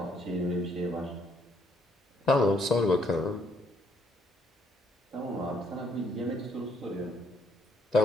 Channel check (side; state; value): both; normal; correlation 0.68